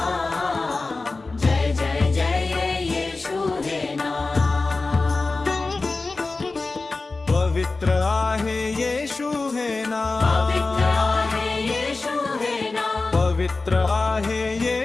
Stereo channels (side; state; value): right; quieter; 3.6 dB